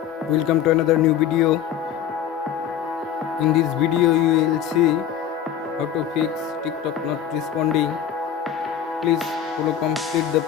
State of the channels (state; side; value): quieter; right; 9.4 dB